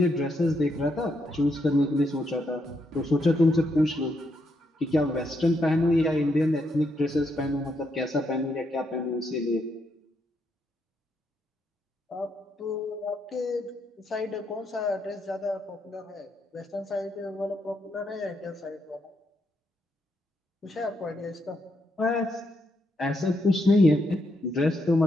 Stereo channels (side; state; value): both; normal; correlation 0.78